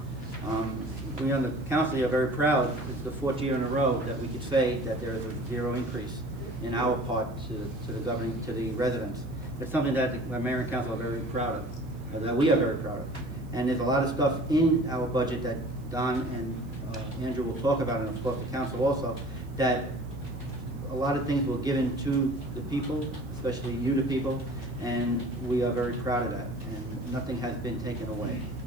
We on the council are very proud. It's the fourth year in a row that we could say that there is a zero increase in our part to the governing, to the residents. It's something that the mayor and council are very proud of, that we are very proud of. And there's a lot of stuff in our budget that Don and Andrew will talk about, and of course the council also, that a lot of things were given to the people, especially you, the people, and we are very proud of that, and nothing has been taken away.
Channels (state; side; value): noise; right; hiss, 29 dB below the sound